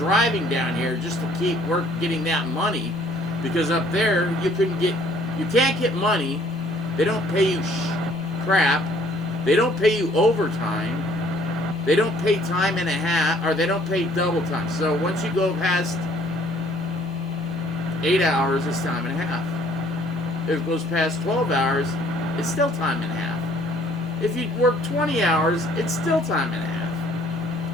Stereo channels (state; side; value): normal; both; correlation 0.59